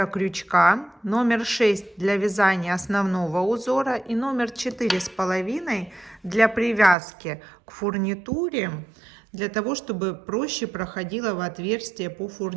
крючка, номер 6 для вязания основного узора и номер 4,5 для привязки к фурнитуре, для того, чтобы проще проходила в отверстие по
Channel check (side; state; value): left; drops out; at 7.0 s